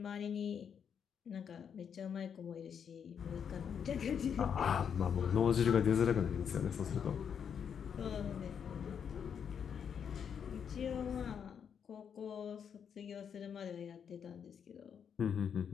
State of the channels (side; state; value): right; quieter; 7.6 dB